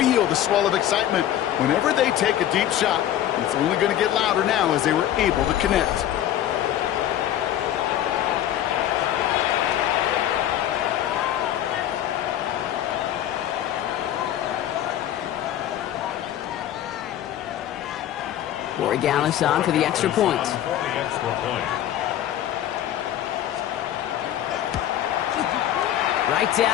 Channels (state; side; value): quieter; right; 11.7 dB